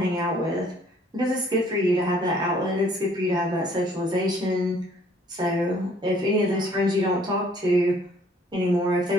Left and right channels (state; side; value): normal; both; correlation 0.60